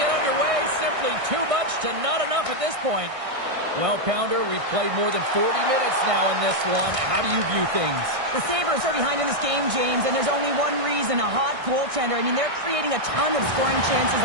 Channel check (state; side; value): late; left; 1.6 ms